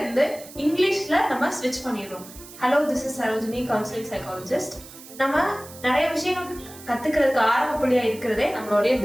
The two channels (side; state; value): right; noise; hiss, 18 dB below the sound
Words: இருந்து இங்கிலீஷ்ல நம்ம ஸ்விட்ச் பண்ணிடுறோம். Hello, this is Sarojini, counselling psychologist. நம்ம நிறைய விஷயங்கள் கத்துக்கிறதுக்கு ஆரம்ப புள்ளியா இருக்கிறதே நம்மளுடைய